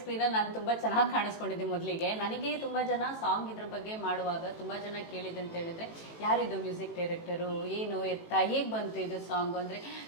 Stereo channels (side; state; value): right; late; 18 ms